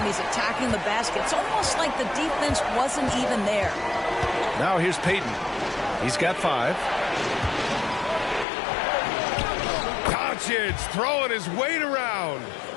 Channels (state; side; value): drops out; right; at 8.5 s